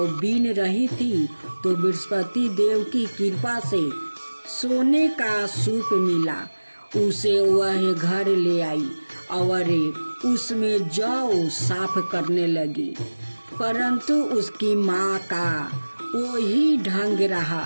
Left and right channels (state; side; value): inverted; both; correlation -1.00